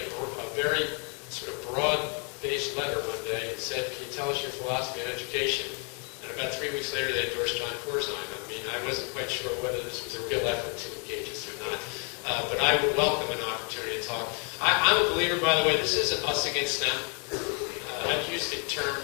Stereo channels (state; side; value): quieter; right; 37.7 dB